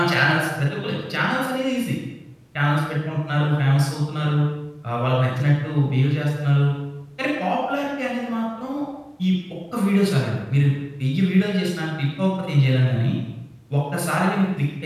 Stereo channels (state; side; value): identical; both; correlation 1.00